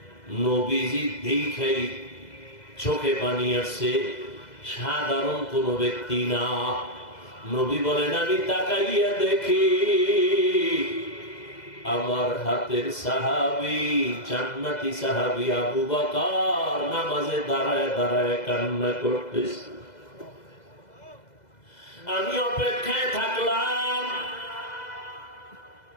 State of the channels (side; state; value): right; late; 2.0 ms